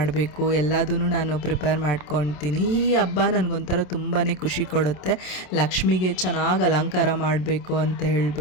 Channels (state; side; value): late; right; 27 ms